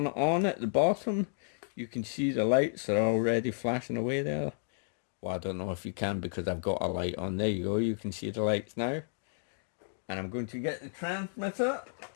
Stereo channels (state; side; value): silent; right; digital silence